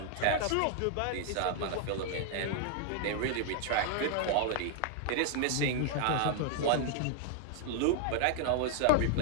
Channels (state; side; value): different; both; correlation 0.00